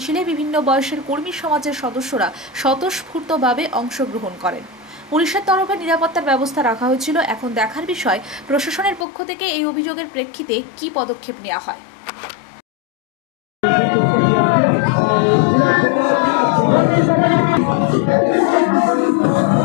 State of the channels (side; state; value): right; drops out; at 9.1 s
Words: বিভিন্ন বয়সের কর্মী সমাজের সদস্যরা স্বতঃস্ফূর্তভাবে অংশগ্রহণ করেন। পুলিশের তরফে নিরাপত্তার ব্যবস্থা রাখা হয়েছিল। এখন দেখার বিষয় প্রশাসনের পক্ষ থেকে এই অভিযোগের প্রেক্ষিতে কী পদক্ষেপ নেওয়া হয়।